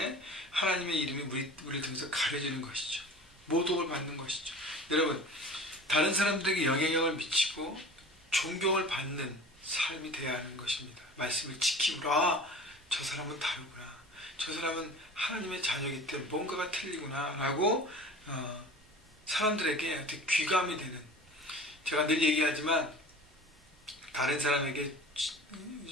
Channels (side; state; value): both; normal; correlation 0.40